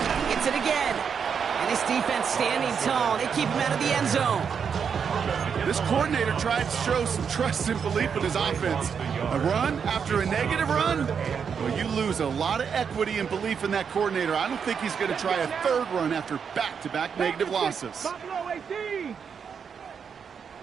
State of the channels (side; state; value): left; quieter; 6.7 dB